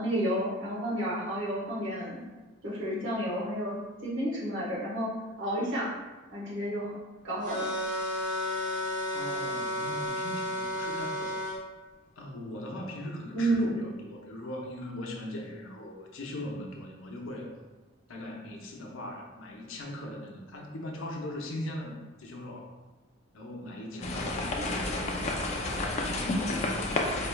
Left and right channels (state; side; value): normal; both; correlation 0.33